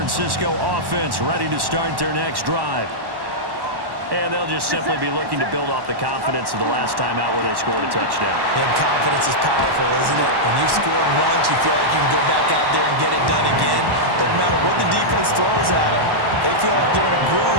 offense ready to start their next drive. And they'll just simply be looking to build off the confidence of the last time out where they scored a touchdown. And confidence is powerful, isn't it? When you've scored once, you feel like you can go back out there and get it done again. Doesn't matter what the defense throws at them. They feel like they're in a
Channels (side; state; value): left; late; 1.1 ms